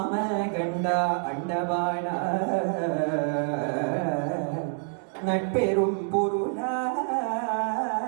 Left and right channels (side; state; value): left; silent; 60 dB below the other